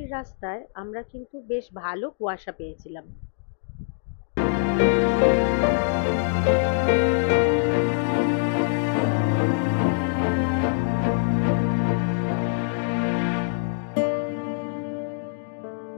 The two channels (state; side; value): silent; right; digital silence